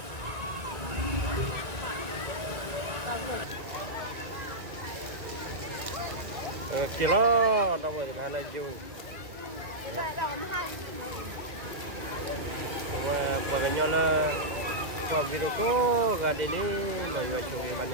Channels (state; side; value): late; left; 1.8 ms